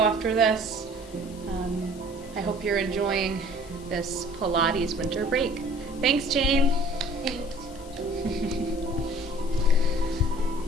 this. I hope you're enjoying this Pilates winter break. Thanks, Jane. Thanks.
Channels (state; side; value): noise; left; hiss, 22 dB below the sound